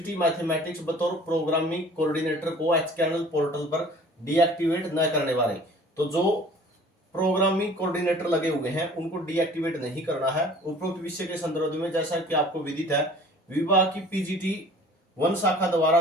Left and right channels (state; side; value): normal; both; correlation 0.48